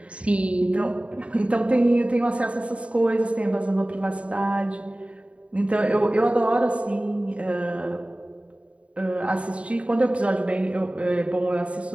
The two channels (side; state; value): left; late; 0.063 ms